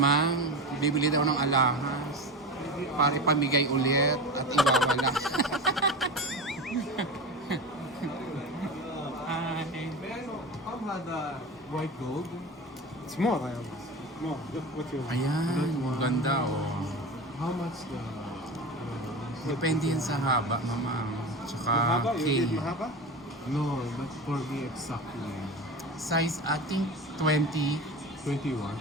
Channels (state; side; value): normal; both; correlation 0.27